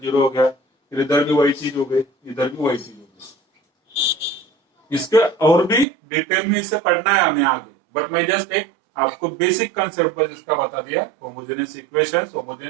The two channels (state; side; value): drops out; left; at 5.9 s